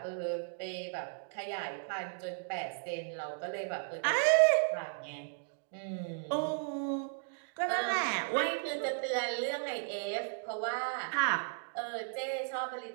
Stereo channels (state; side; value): silent; left; digital silence